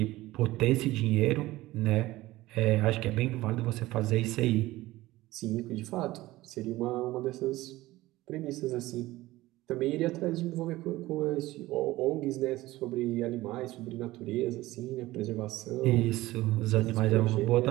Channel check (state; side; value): quieter; left; 17.7 dB